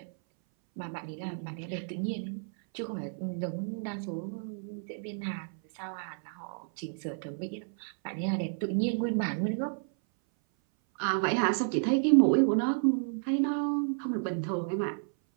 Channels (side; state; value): left; silent; 57 dB below the other